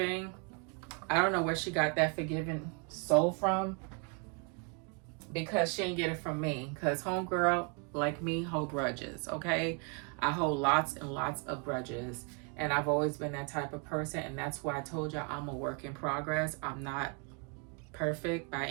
I don't know where she got that forgiving soul from, because she didn't get it from me. Because homegirl, like me, hold grudges, okay? I hold lots and lots of grudges. And I've always been that type of person. And that's why I told y'all I'm a work in progress. I'm not perfect by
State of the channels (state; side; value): quieter; left; 35.0 dB